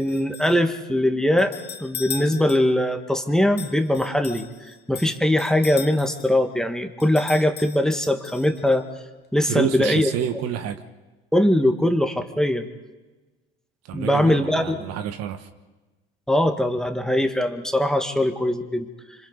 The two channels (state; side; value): normal; both; correlation 0.86